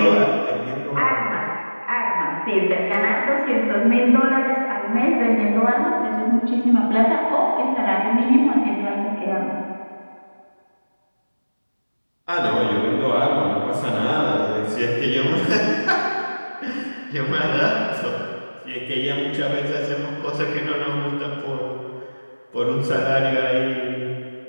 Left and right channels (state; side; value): inverted; both; correlation -1.00